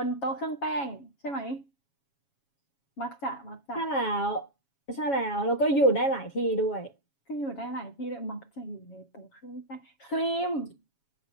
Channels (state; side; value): late; right; 7.2 ms